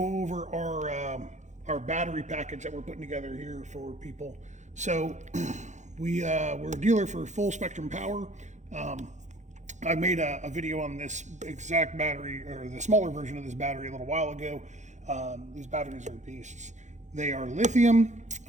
over our battery package that we're putting together here for people. So we're a dealer for full spectrum power. I made a video on this exact battery, or the smaller version of this battery, a little while ago. These batteries are beasts. They are lithium.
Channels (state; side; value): late; left; 0.34 ms